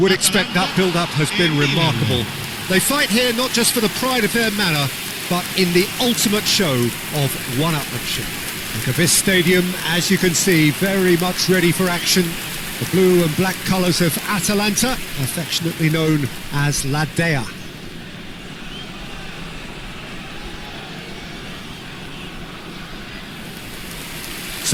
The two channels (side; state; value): both; identical; correlation 1.00